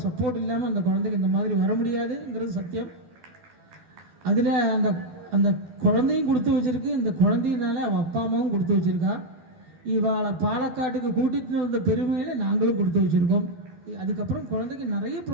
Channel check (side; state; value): left; late; 12 ms